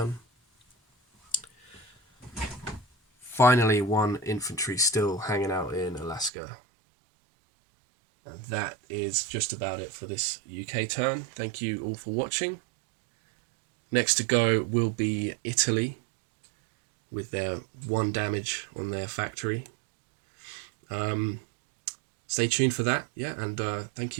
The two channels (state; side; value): drops out; left; at 6.3 s